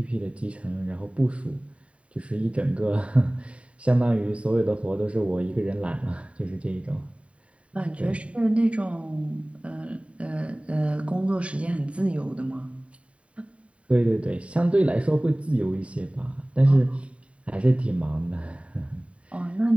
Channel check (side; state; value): left; late; 0.063 ms